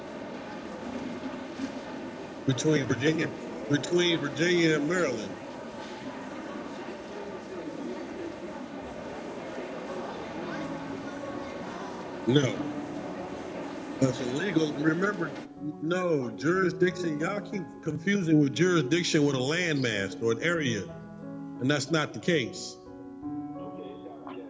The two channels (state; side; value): identical; both; correlation 1.00